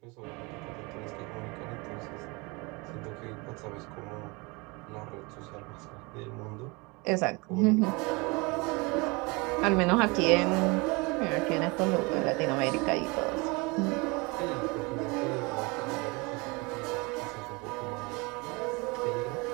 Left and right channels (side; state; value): left; quieter; 27.0 dB